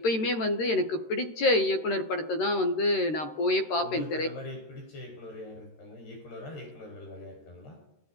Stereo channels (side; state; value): right; late; 13 ms